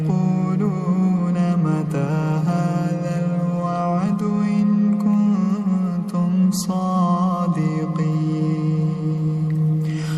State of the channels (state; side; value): identical; both; correlation 1.00